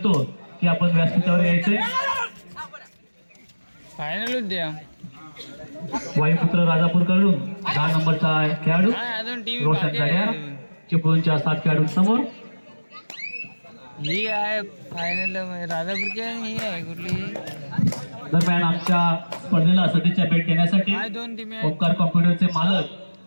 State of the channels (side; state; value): both; inverted; correlation -1.00